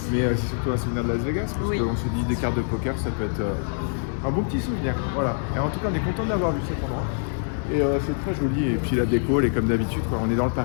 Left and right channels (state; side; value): silent; right; digital silence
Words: Mais c'est surtout un souvenir de Las Vegas, parce qu'on se dit des cartes de poker, ça peut être un bon petit souvenir. Voilà. Et en tout cas, on est content d'avoir vu cet endroit. Et c'est très joli. Et puis la déco, elle est comme d'habitude, quoi. On est dans le